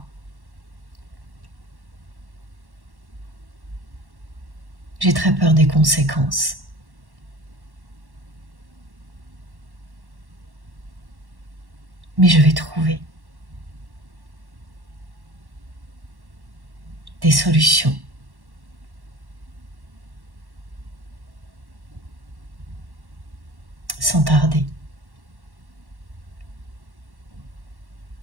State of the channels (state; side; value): late; left; 1.1 ms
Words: J'ai très peur des conséquences. Mais je vais trouver des solutions. Sans tarder.